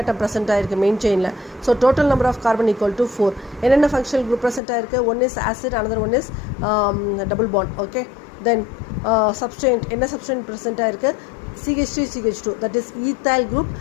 present ஆகிருக்கு மெயின் செயினில். So total number of carbon equal to 4. என்னென்ன ஃபங்க்ஷனல் குரூப் ப்ரெசென்ட் ஆகிருக்கு? One is acid, another one is double bond. Okay, then substituent. என்ன substituent present ஆகிருக்கு? CH3CH2, that is ethyl group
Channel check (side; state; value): right; drops out; at 4.6 s